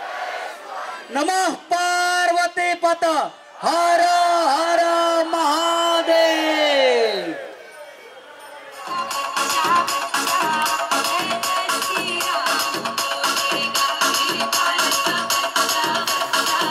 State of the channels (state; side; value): identical; both; correlation 1.00